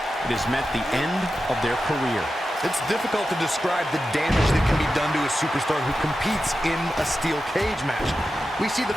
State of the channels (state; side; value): normal; both; correlation 0.91